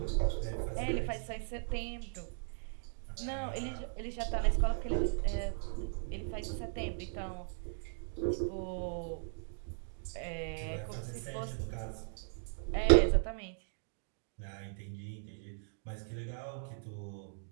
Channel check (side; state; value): left; silent; digital silence